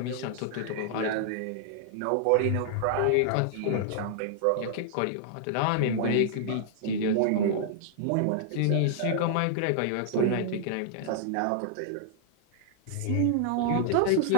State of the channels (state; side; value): different; both; correlation -0.01